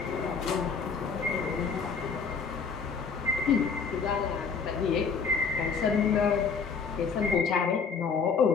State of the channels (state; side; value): quieter; right; 5.6 dB